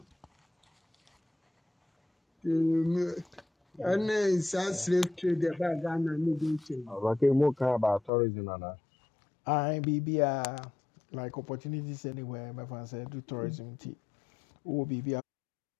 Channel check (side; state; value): right; drops out; at 8.1 s